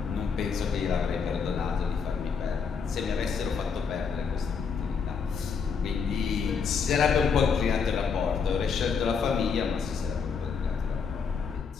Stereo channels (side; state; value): right; quieter; 5.9 dB